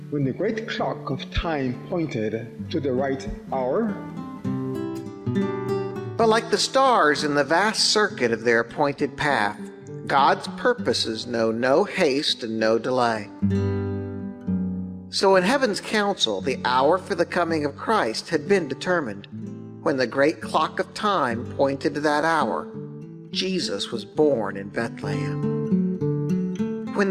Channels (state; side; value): identical; both; correlation 1.00